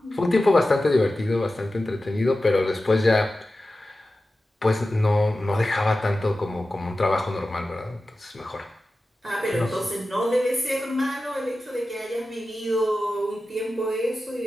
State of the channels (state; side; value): normal; both; correlation 0.94